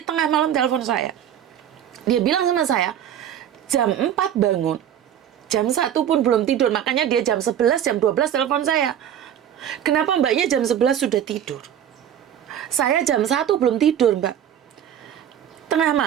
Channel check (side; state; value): left; quieter; 9.9 dB